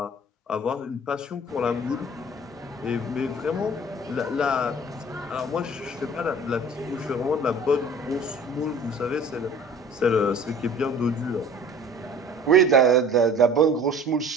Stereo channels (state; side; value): normal; both; correlation 0.46